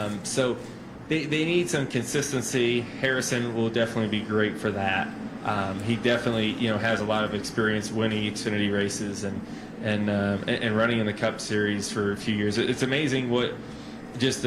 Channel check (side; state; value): both; identical; correlation 1.00